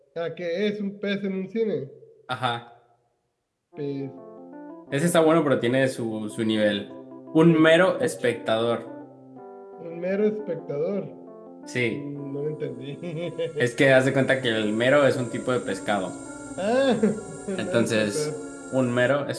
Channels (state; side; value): identical; both; correlation 1.00